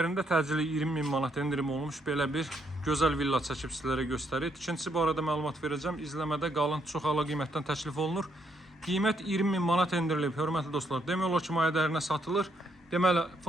təcili 20.000 manat endirim olmuş belə bir gözəl villa çəkib sizlərə göstərir. Tikinti barədə məlumat verəcəm. İzləmədə qalın, çox əla qiymətdən təklif olunur. Qiymət 20.000 manat endirilib, hörmətli dostlar. Demək olar ki, maya dəyərinə satılır. Deməli,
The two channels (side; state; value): both; normal; correlation 0.74